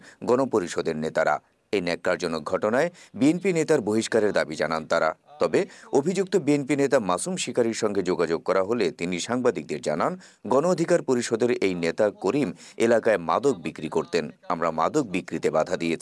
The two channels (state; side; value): identical; both; correlation 1.00